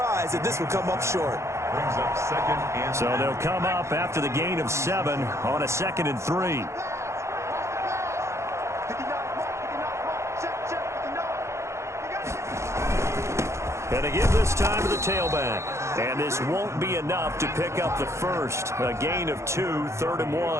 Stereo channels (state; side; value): late; left; 0.14 ms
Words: that this would come up short. Brings up 2nd and 3. So they'll come up after the gain of 7 on a 2nd and 3. And they give this time to the tailback. And this won't be enough to pick up the first. A gain of 2, 3rd and